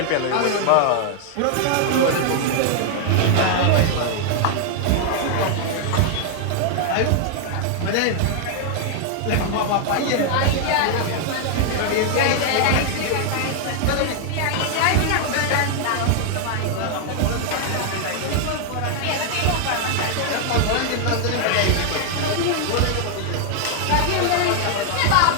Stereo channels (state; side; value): different; both; correlation 0.00